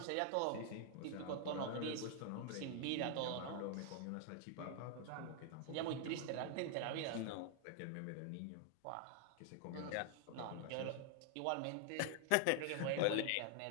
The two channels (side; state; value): both; different; correlation 0.00